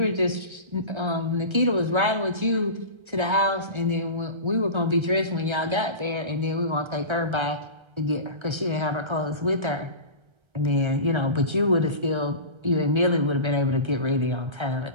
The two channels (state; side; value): late; left; 1.3 ms